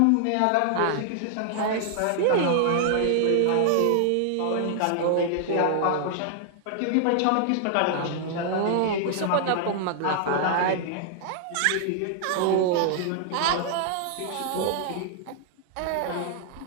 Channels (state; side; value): different; both; correlation -0.01